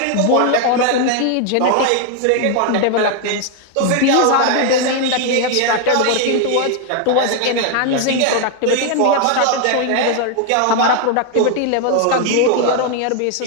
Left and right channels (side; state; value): both; different; correlation 0.00